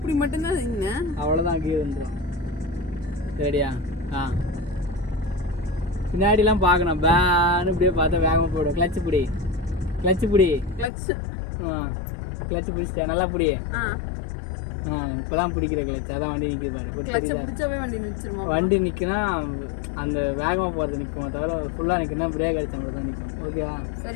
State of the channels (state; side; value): drops out; right; at 10.9 s